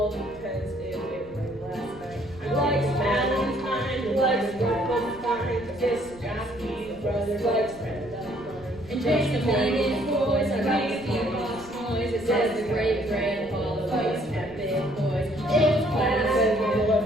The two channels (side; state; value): right; noise; rumble, 22 dB below the sound